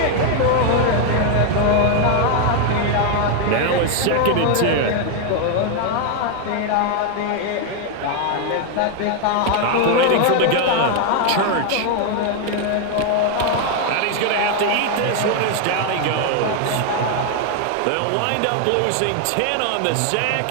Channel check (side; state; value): both; different; correlation 0.01